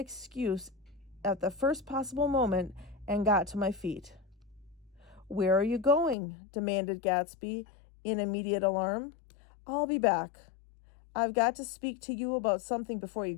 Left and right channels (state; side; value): drops out; right; at 6.2 s